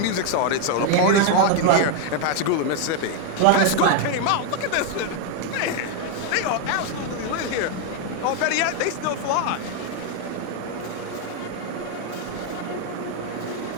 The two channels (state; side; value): different; both; correlation 0.01